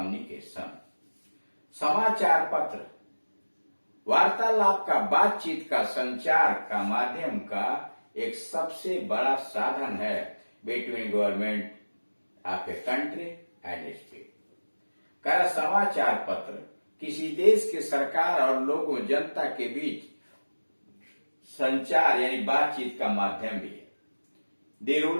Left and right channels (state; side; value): inverted; both; correlation -1.00